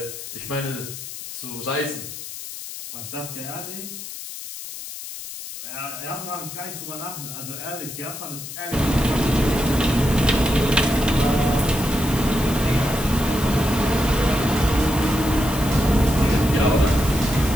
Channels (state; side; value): noise; left; hiss, 10 dB below the sound